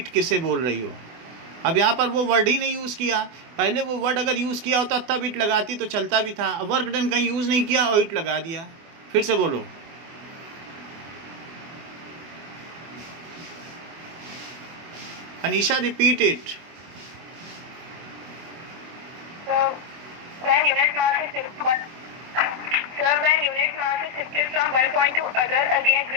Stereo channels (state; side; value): late; left; 24 ms